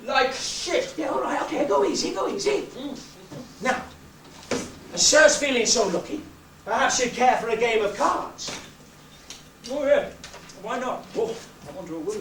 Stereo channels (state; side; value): identical; both; correlation 1.00